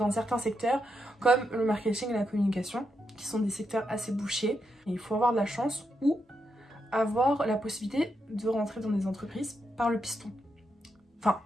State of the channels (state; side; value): normal; both; correlation 0.83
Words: certains secteurs comme le marketing et la communication qui sont des secteurs assez bouchés, et il faut avoir de la chance ou avoir la possibilité de rentrer dans des entreprises par le piston, enfin